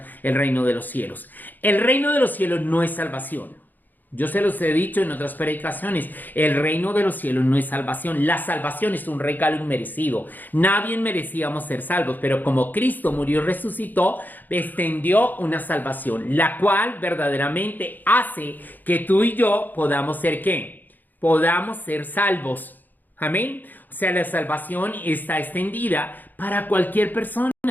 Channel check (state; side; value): late; right; 0.086 ms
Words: el reino de los cielos. El reino de los cielos no es salvación. Yo se los he dicho en otras predicaciones, el reino de los cielos no es salvación. La salvación es un regalo inmerecido. Nadie merecíamos ser salvos, pero como Cristo murió y resucitó, extendió una salvación, la cual verdaderamente hace que tú y yo podamos ser ¿qué? Podamos ser salvos. Amén. O sea, la salvación está extendida para cualquier persona.